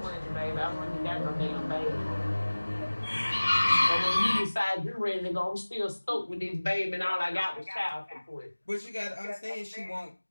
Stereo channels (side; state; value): both; inverted; correlation -1.00